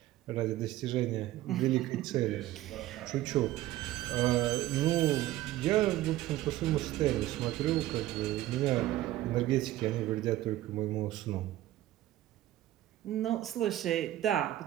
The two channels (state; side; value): quieter; left; 15.0 dB